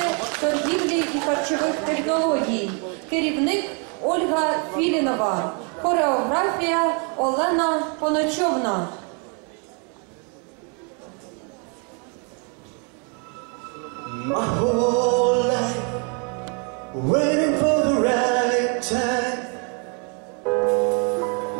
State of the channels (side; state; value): left; quieter; 36.9 dB